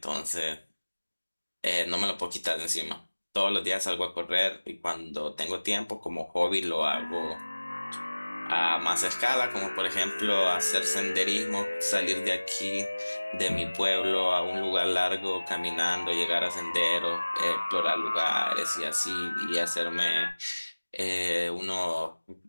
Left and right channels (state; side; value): inverted; both; correlation -1.00